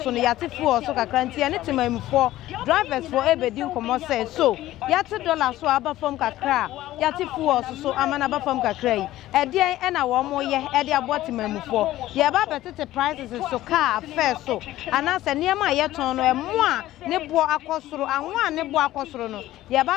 no ya tefo so kakra ntie ne timamufo drivers for e bedi nkomo se so ya te dollar so aba fam kakra ya ti fuo so amana ba fam kakra yi e de e na wo mo ye e de aboti mamufo ye ba betete prices so car fair so anase niam ye ton no e mo a ne bo akosoro anwo a ne bo akosoro no ye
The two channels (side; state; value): right; quieter; 15.1 dB